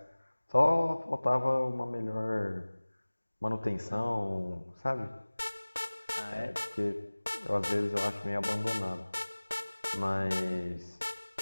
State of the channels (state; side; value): inverted; both; correlation -1.00